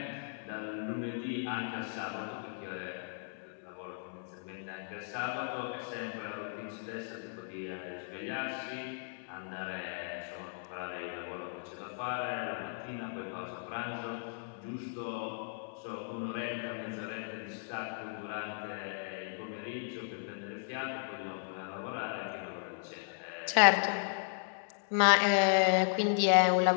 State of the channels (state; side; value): silent; right; 54 dB below the other